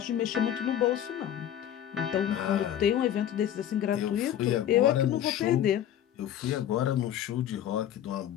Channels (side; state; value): right; quieter; 10.7 dB